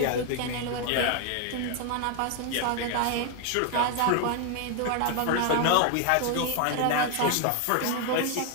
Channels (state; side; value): different; both; correlation 0.01